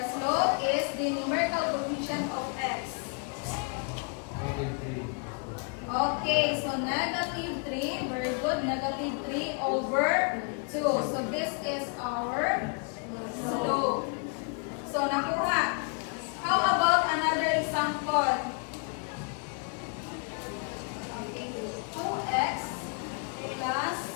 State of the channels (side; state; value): right; quieter; 38.9 dB